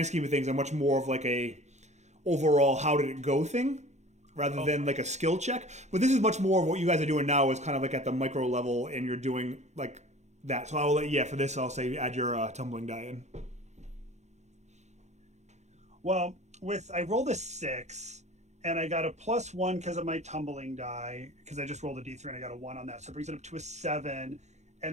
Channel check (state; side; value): late; left; 0.33 ms